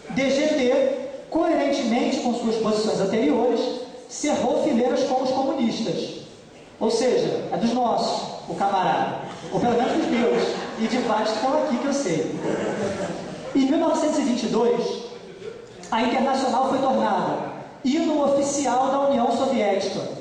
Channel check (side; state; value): both; identical; correlation 1.00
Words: DGT, coerentemente com suas posições anteriores, cerrou fileiras com os comunistas. Ou seja, é dos nossos, o camarada. Ou pelo menos dos meus. E de vários que estão aqui que eu sei. Em 1922, a Internacional foi tornada hino oficial da União Soviética,